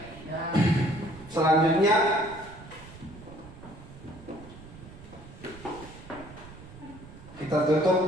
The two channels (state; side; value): noise; right; rumble, 17 dB below the sound